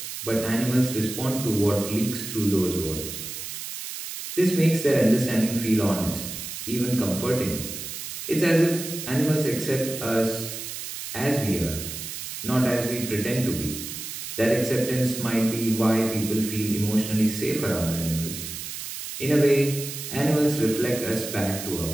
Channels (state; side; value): noise; right; hiss, 8 dB below the sound